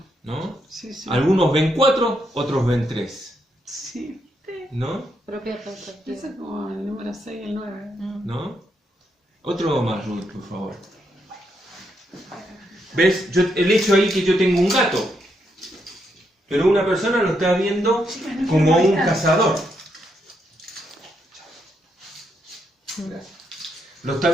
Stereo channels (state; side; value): normal; both; correlation 0.79